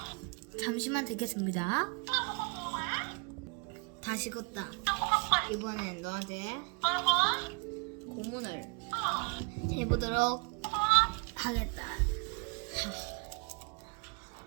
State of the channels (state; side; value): quieter; left; 32.8 dB